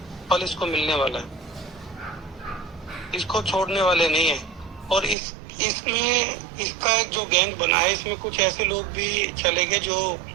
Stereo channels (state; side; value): drops out; left; at 5.2 s